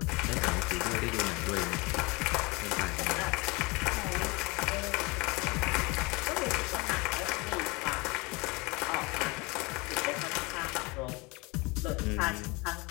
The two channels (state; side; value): quieter; right; 26.2 dB